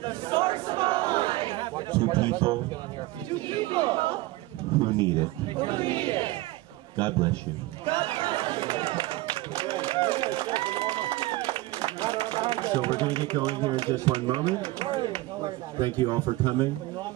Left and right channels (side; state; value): left; quieter; 19.2 dB